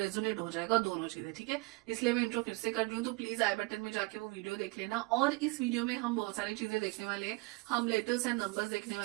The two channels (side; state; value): left; quieter; 25.4 dB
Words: हो जाएगा दोनों चीजें। ठीक है, इसलिए मैं इंट्रो फिर से कर रही हूँ, तो प्लीज आई बटन में जाके वो वीडियो देख लेना। और इस वीडियो में हम बहुत सारी चीजें देखने वाले हैं। हम लेटर्स एंड नंबर्स देखने